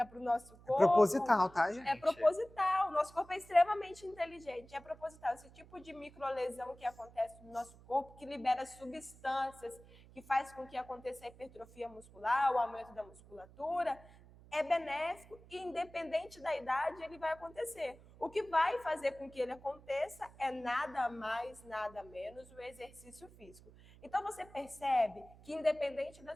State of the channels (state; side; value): noise; right; hum, 22 dB below the sound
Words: para o nosso corpo... É proposital, tá, gente? É proposital. O nosso corpo é extremamente inteligente. É proposital. Esse tipo de microlesão que acontece no nosso corpo, que libera substâncias, que faz com que aconteça a hipertrofia muscular, o aumento da musculatura, é benéfico e, independente da idade, ele vai acontecer. O que vai fazer com que ele aconteça é nada mais, nada menos o exercício físico. Então, você percebe que, independente da